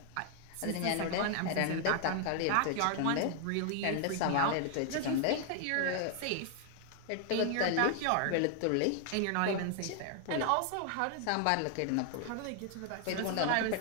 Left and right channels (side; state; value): both; different; correlation 0.00